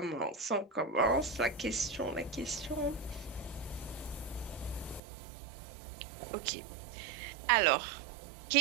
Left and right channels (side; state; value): left; drops out; at 5.0 s